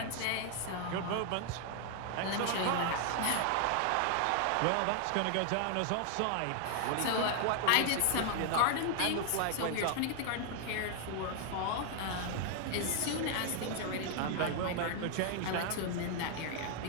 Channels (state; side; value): different; both; correlation 0.00